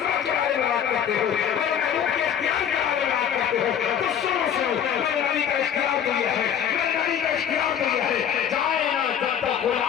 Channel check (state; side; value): quieter; right; 8.9 dB